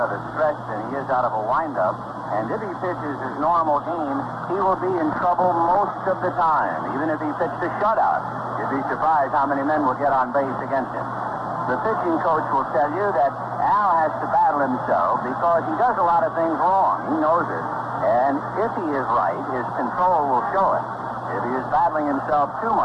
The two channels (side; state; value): both; identical; correlation 1.00